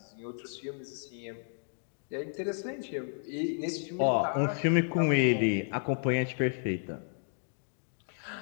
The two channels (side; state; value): right; silent; digital silence